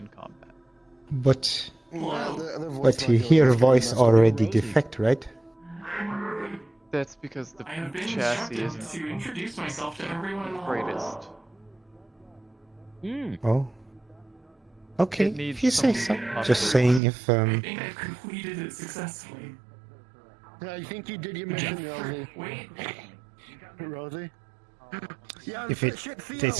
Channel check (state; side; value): drops out; left; at 17.0 s